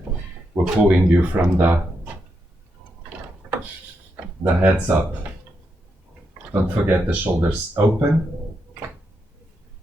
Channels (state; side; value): normal; both; correlation 0.83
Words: were pulling you from the heads up. Don't forget the shoulders open.